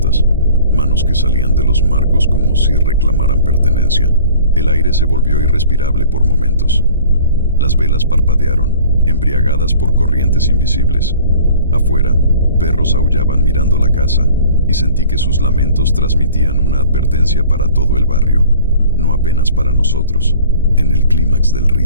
manos que salían de los marcos como si reclamaran pertenencia. El aire se volvió irrespirable por momentos. Las velas parpadearon, embriagadas por corrientes invisibles. Afuera, perros aullaban mirando la casa, y sentí que sus lamentos transmitían una advertencia para todo el barrio, no apenas para nosotros. En el clímax del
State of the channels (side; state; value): both; inverted; correlation -0.47